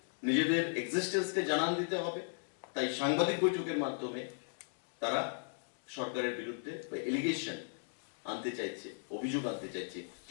নিজেদের এক্সিস্টেন্সকে জানান দিতে হবে। তাই সাংবাদিক বৈঠকের মাধ্যমে তারা সরকারের বিরুদ্ধে বা এলিগেশন আনতে চাইছে, অভিযোগ আনতে চাইছে,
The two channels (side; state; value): right; silent; digital silence